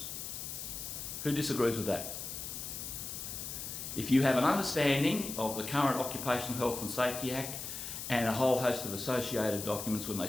Who disagrees with that? If you have an understanding of the current Occupational Health and Safety Act and a whole host of associated documents, when they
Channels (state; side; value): noise; left; hiss, 7 dB below the sound